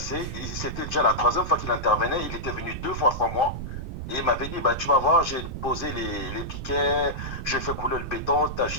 C'était déjà la troisième fois qu'il intervenait. Il était venu 2 fois sans moi. Et il m'avait dit, bah, tu vas voir, j'ai posé les piquets, j'ai fait couler le béton, tu as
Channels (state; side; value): noise; right; rumble, 6 dB below the sound